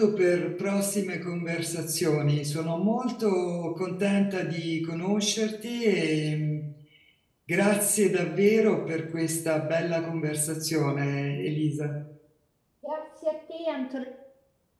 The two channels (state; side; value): identical; both; correlation 1.00